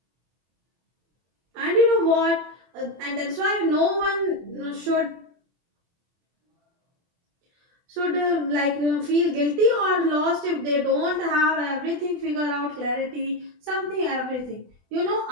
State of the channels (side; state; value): left; late; 24 ms